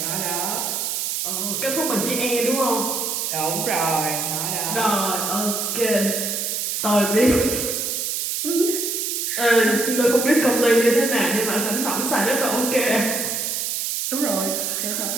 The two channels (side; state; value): right; noise; hiss, 1 dB below the sound